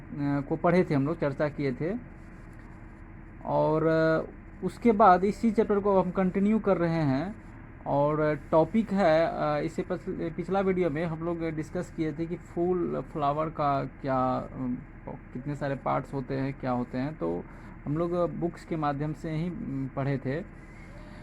पढ़े थे, हम लोग चर्चा किए थे। और उसके बाद इसी चैप्टर को हम कंटिन्यू कर रहे हैं और टॉपिक है इससे पिछला वीडियो में हम लोग डिस्कस किए थे कि फूल फ्लावर का क्या कितने सारे पार्ट्स होते हैं, क्या होते हैं, तो हम लोग बुक्स के माध्यम से ही पढ़े थे।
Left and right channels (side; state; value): both; identical; correlation 1.00